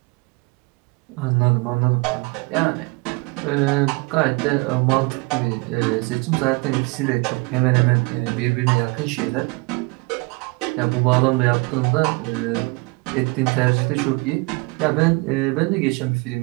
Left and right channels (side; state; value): left; quieter; 27.2 dB